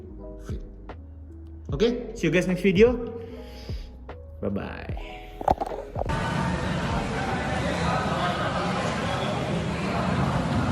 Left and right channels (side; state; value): both; identical; correlation 1.00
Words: fit. Oke, see you guys next video. Bye bye.